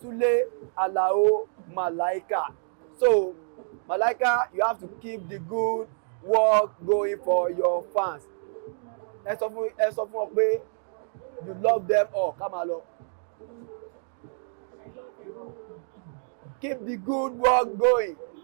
Túlé Alao Malaika. So Malaika, you have to keep the good work going for your fans. Ẹ sọ fún ọ pé you love them all. Ká máa lọ. I love you all. Keep the good work going.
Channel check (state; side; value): silent; left; digital silence